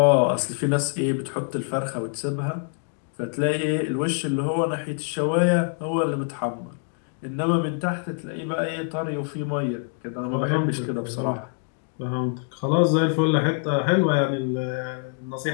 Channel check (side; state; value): right; silent; 55 dB below the other